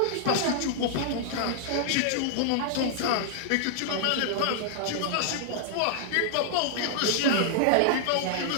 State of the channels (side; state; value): both; different; correlation -0.01